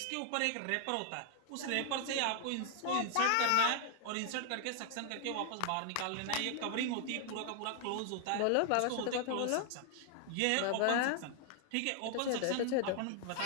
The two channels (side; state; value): both; different; correlation 0.00